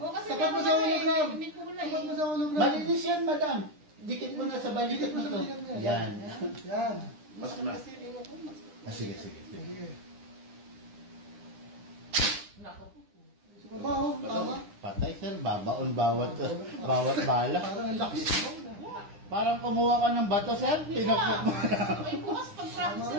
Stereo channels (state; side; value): late; left; 9.9 ms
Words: kasi Tapat mo sa hologram. May kulay Tapat mo eh. sa hologram. Malinis yan, madam. Dikit mo na sa balikat mo to. Dikit mo sa balikat mo. Yan. Yan. Mas na. Kasi rin ako, mas... Sige. Sige. Sa baba, oh. Tama. Patay sir, babaon bawat bala. Parang ang lakas. Parang kumuha ka ng bato sir, pinakpak mo. Ay, bukas pag-practice